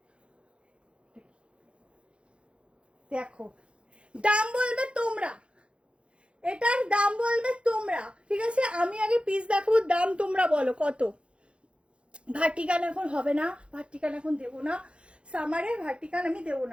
দেখো দাম বলবে তোমরা, এটার দাম বলবে তোমরা, ঠিক আছে আমি আগে পিস দেখাবো, দাম তোমরা বলো কত। ভার্টিকান এখন হবে না, ভার্টিকান এখন দেবো না, সামারে ভার্টিকান আমি দেবো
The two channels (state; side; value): late; left; 0.058 ms